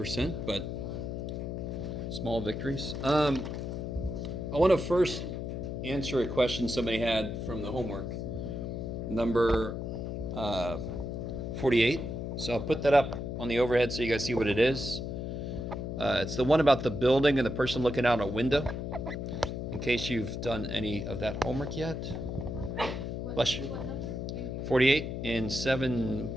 but small victories. I want to first answer a question somebody had from the homework, number 48. So I'll put that up on the overhead so you guys see what it is. It's the one about the building and the person looking out a window, in case you've done any of that homework yet. Bless you. 48 in 7,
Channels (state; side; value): noise; left; hum, 4 dB below the sound